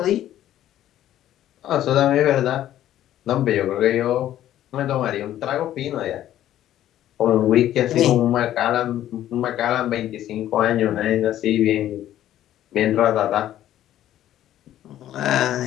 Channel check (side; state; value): right; quieter; 12.5 dB